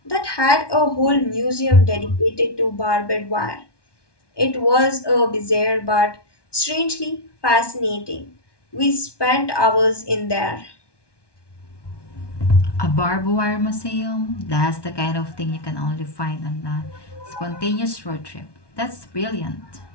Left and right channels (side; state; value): right; late; 1.2 ms